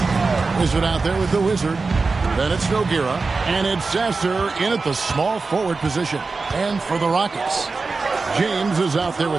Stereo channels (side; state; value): left; quieter; 4.1 dB